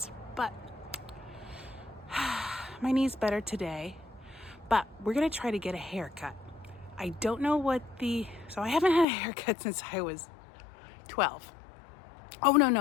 But my knee's better today, but we're gonna try to get a haircut. I don't know so I haven't had a haircut since I was 12. Oh,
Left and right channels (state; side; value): drops out; right; at 9.1 s